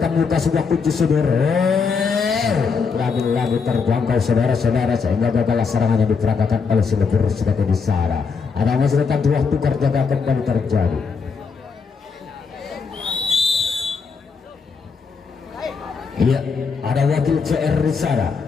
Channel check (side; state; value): right; quieter; 5.3 dB